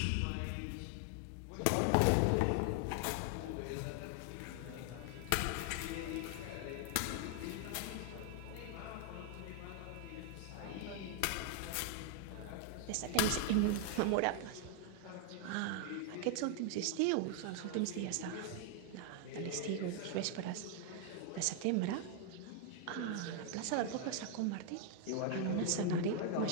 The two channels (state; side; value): different; both; correlation 0.00